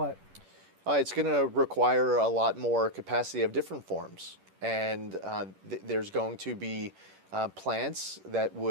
It's going to require a lot more capacity of different forms. And there's going to be plants that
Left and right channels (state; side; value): late; left; 11 ms